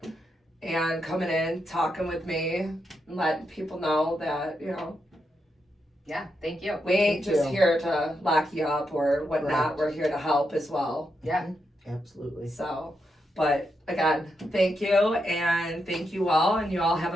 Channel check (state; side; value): normal; both; correlation 0.83